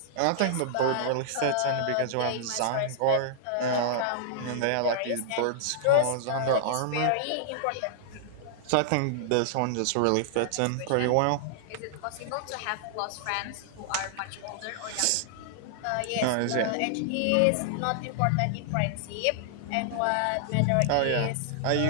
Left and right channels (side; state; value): both; different; correlation -0.01